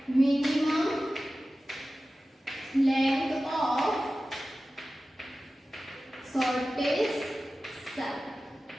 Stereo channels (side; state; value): both; normal; correlation 0.95